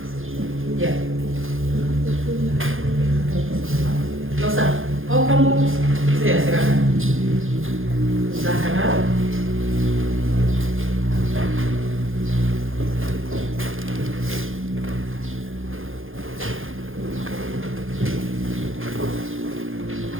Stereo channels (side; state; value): left; late; 0.59 ms